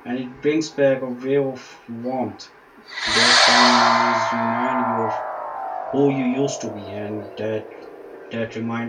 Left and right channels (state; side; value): identical; both; correlation 1.00